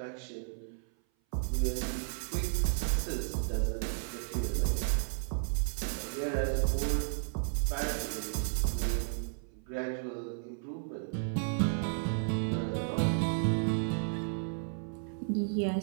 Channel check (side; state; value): left; silent; 56 dB below the other